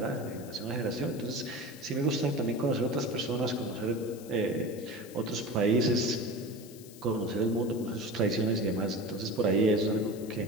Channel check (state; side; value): noise; left; hiss, 19 dB below the sound